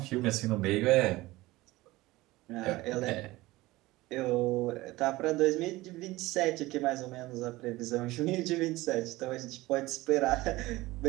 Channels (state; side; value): quieter; left; 19.1 dB